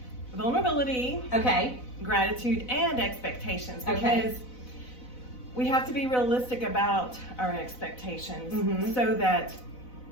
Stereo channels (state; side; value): late; right; 4.0 ms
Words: vulnerability, gratitude, and expectations, because we have to be realistic about our expectations so that